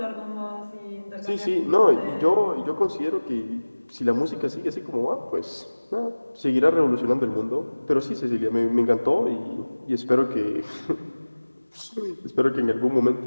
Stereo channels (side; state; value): both; inverted; correlation -1.00